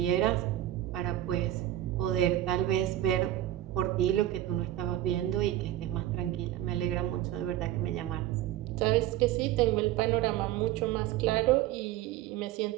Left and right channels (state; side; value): quieter; left; 13.6 dB